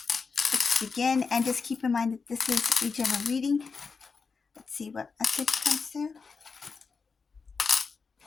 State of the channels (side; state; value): right; quieter; 5.0 dB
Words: Let's begin, and just keep in mind that this is a general reading. Let's see what message comes through.